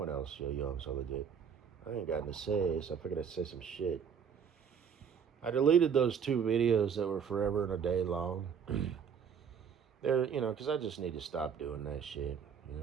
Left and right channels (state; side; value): quieter; left; 7.2 dB